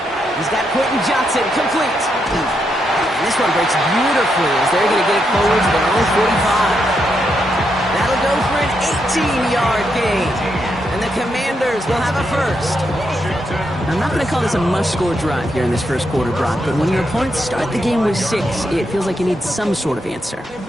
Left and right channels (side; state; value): both; normal; correlation 0.81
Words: He's got Quentin Johnson, complete. And this one breaks beautifully as they're going to get it forward to their own 45. That'll go for an 18-yard gain. And the Commanders will have a first. I'm not going to call this a must-score drive here in this first quarter, Brock, but when your opponents start the game with 6, it feels like you need some sort of answer.